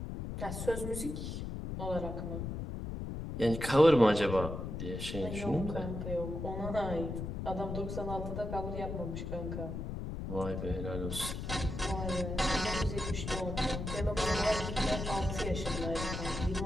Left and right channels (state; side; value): noise; left; rumble, 5 dB below the sound